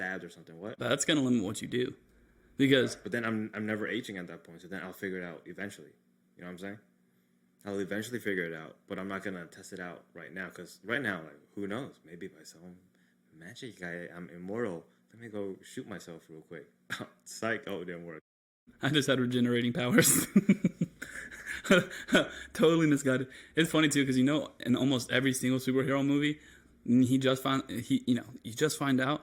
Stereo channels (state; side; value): identical; both; correlation 1.00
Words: or something. What? That's going to limit what you do. Because But then I'm never aging at that point, so then I'll figure it out eventually. You know what I'm saying? I'll eventually figure it out, but I'm not going to test it out right now, because right now, like, who knows? Maybe by some magic, I'm immortal. Let me go shoot myself real quick. Psych. Oh, it didn't work. I just had regenerating powers. Totally misguided. It's funny too, because in almost every single superhero movie, you just find out.